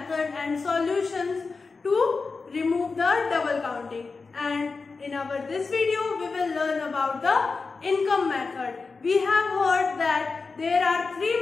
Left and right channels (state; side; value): quieter; right; 4.3 dB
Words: and solutions to remove the double counting. And in our this video we will learn about the income method. We have heard that there are three